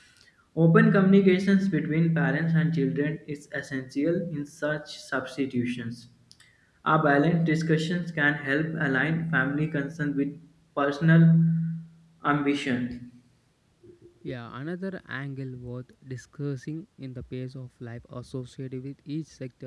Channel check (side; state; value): both; identical; correlation 1.00